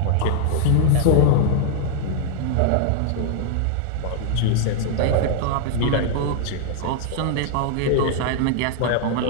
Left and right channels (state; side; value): different; both; correlation 0.00